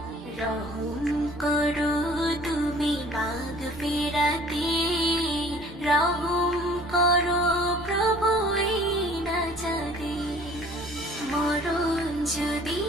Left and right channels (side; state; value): both; normal; correlation 0.51